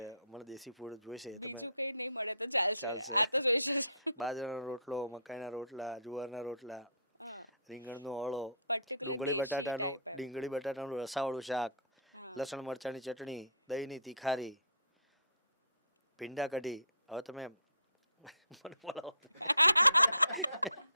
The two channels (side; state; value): both; inverted; correlation -0.56